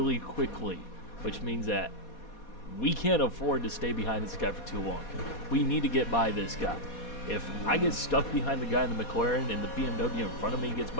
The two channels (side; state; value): right; late; 4.2 ms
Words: quickly, which means that we can't afford to stay behind this guy for too long. We need to get by this guy. If I get stuck behind the guy in the McLaren and the BMW in front of me gets